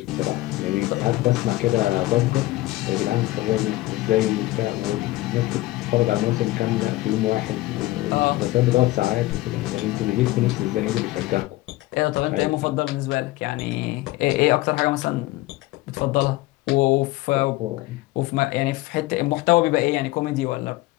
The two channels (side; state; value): right; quieter; 18.2 dB